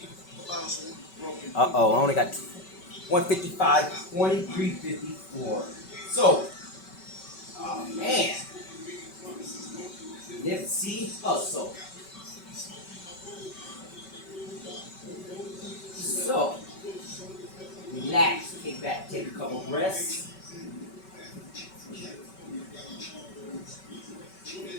Uh-oh, I only got 155, 2354. So, oh man, Nipsey Hussle. So, relax, kick back, take a couple breaths.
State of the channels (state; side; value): late; right; 5.3 ms